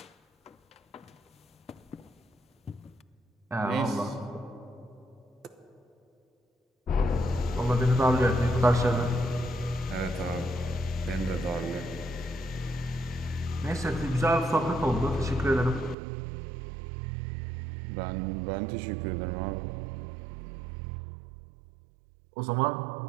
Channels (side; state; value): left; drops out; at 16.0 s